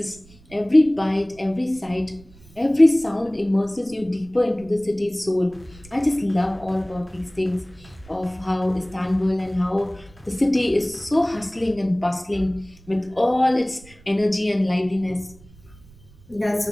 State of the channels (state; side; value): noise; right; rumble, 24 dB below the sound